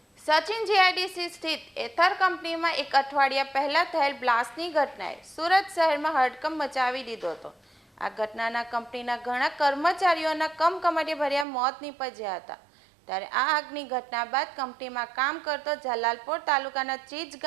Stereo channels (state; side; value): drops out; left; at 11.5 s